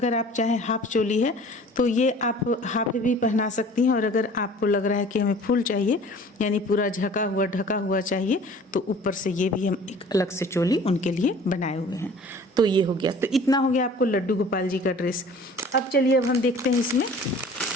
आप चाहें हाफ चोली है तो ये आप हाफ भी पहना सकती हैं, और अगर आपको लग रहा है कि हमें फुल चाहिए यानी पूरा ढका हुआ चाहिए तो ऊपर से ये भी हम एक अलग से चोली उनके लिए बनाए हुए हैं। तो ये हो गया, तो इतना हो गया आपको लड्डू गोपाल जी का ड्रेस। अब चलिए अब हम देखते हैं इसमें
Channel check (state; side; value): normal; both; correlation 0.47